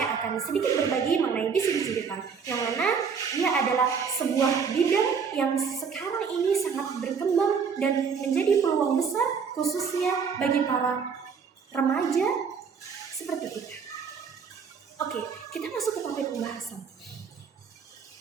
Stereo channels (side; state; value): left; quieter; 6.1 dB